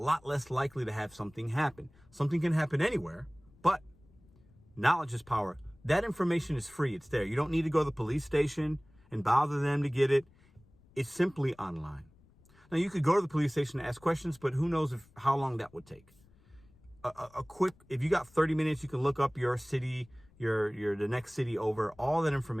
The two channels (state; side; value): noise; left; rumble, 29 dB below the sound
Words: less likely to have something happen. Something can happen anywhere, but knowledge is power. That information is free. It's there. You don't need to go to the police station and bother them to get it. It's simply online. Now, you could go to the police station and ask questions, but who knows how long that would take. If you got 30 minutes, you can look up your city, the next city over. All that